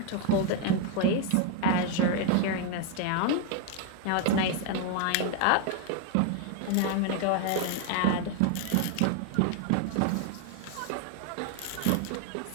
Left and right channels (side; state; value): both; different; correlation 0.01